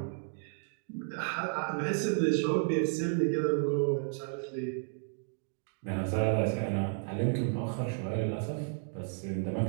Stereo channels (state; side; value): silent; left; 56 dB below the other